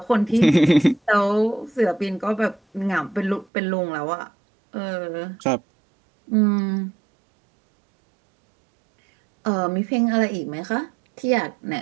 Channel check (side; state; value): left; drops out; at 3.5 s